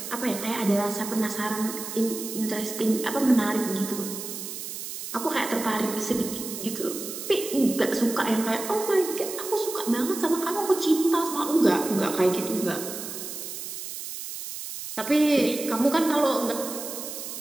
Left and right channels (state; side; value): noise; right; hiss, 8 dB below the sound